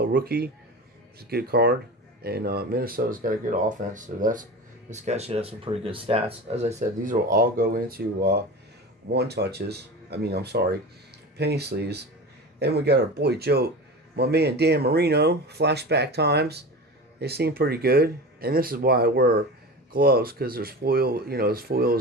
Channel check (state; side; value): normal; both; correlation 0.30